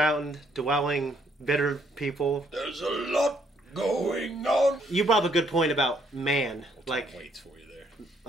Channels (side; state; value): both; normal; correlation 0.68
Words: dwelling, bitter people. There's a lot going on. You brought up a good point about man. Waits for you there.